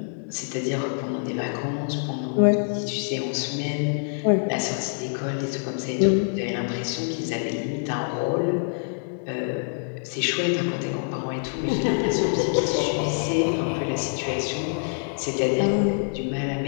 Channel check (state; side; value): silent; right; 61 dB below the other